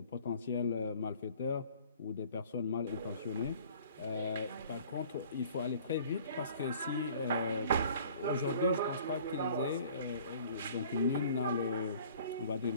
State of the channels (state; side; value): inverted; both; correlation -0.51